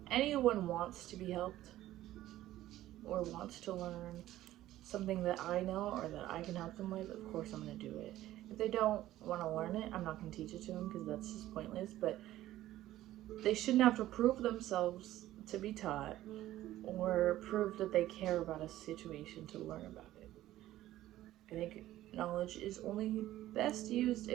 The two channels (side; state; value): left; quieter; 14.5 dB